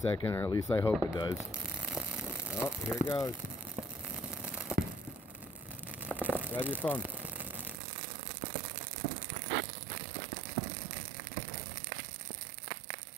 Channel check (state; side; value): drops out; left; at 7.8 s